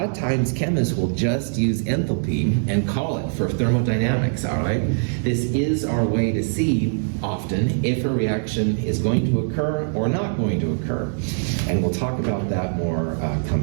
of times chemists will just use enthalpy and call it for thermodynamics, all right? This is our way to see often if a reaction is going to occur or not going to occur. And we'll talk about that more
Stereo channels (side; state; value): left; silent; digital silence